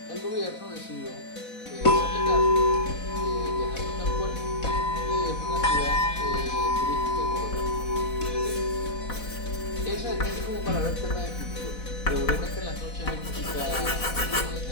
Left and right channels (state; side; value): late; right; 4.1 ms